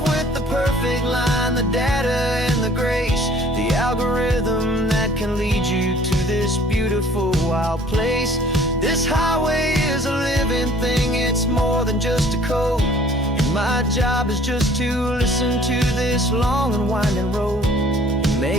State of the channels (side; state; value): both; normal; correlation 0.54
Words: with the perfect line, the data and the grace, the algorithm that can lead you to this beautiful wild place. This highway is a living thing, it's more than just a code. And my job is just to listen to this long and winding road and